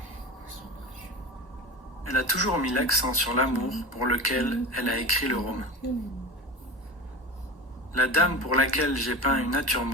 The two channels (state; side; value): normal; both; correlation 0.28